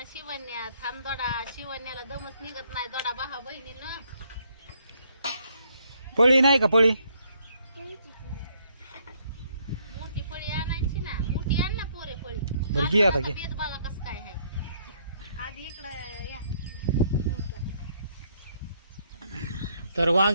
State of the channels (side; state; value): both; inverted; correlation -0.69